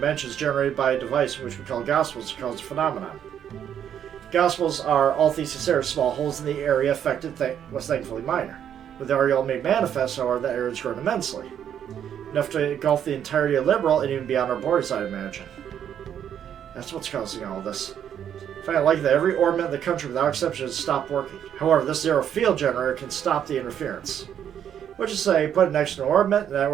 generated by a device which we call Gospels to cause a phenomenon. Gospels are, all things considered, small holes in the area affected was thankfully minor. With the Ariel made manifest, however, the area has grown immensely. Enough to engulf the entirety of Liberal and even beyond our borders, I imagine. That's what's causing all this. I find it likely that every orbit in the country without exception has stopped working. However, this zero field generator can stop the interference. Which is to say, put it next to an orbit, and that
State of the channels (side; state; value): left; quieter; 9.3 dB